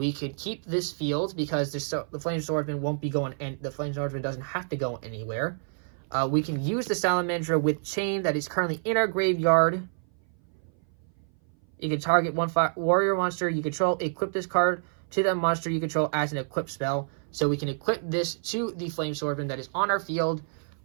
could keep this field because the Flame Swordsman won't be going, and the Flame Swordsman doesn't have to go anywhere. We can use the Salamandra with chain that is currently in our graveyard. You can target one warrior monster you control, equip this card to that monster you control as an equip spell. So we can equip this to the Flame Swordsman that is on our field.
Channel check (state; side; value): silent; left; 57 dB below the other